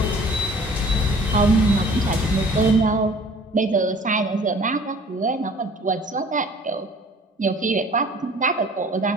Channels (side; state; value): both; normal; correlation 0.50